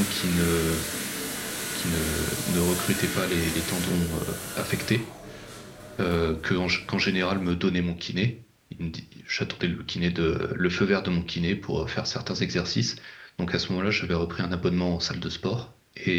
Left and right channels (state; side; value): identical; both; correlation 1.00